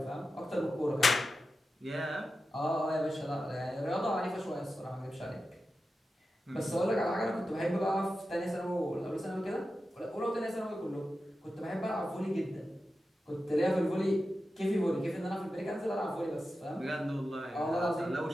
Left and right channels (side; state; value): both; normal; correlation 0.91